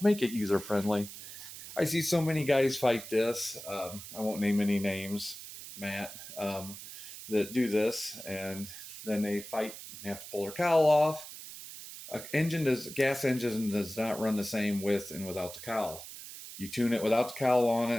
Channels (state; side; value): noise; right; hiss, 12 dB below the sound